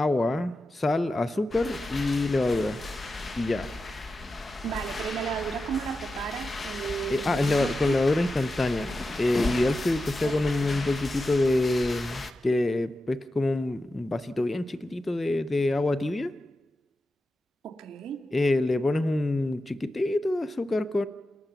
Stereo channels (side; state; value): both; normal; correlation 0.91